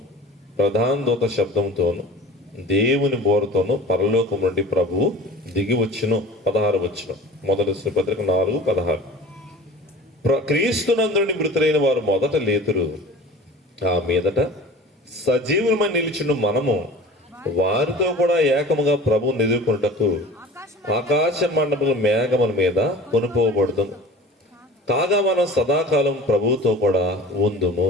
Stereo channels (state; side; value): normal; both; correlation 0.41